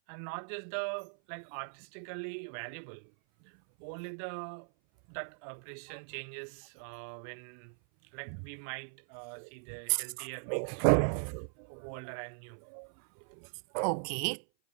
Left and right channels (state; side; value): silent; left; 52 dB below the other